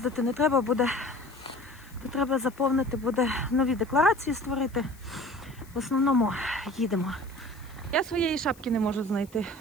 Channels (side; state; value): left; noise; hiss, 25 dB below the sound